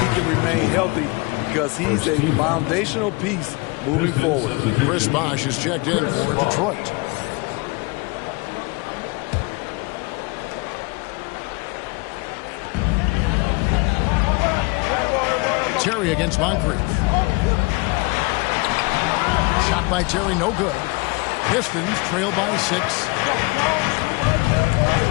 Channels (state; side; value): quieter; right; 27.2 dB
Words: can remain healthy because he's a foundational piece moving forward. Chris Bosh is checked in for Detroit. Terry against Moncrief. Shot by Terry, no good. Pistons trail by 6.